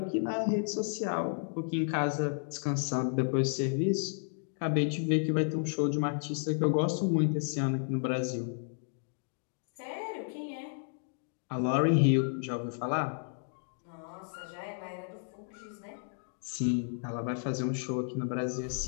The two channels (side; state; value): right; silent; digital silence